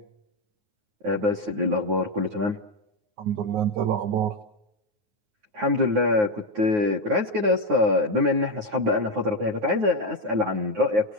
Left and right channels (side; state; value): left; late; 9.5 ms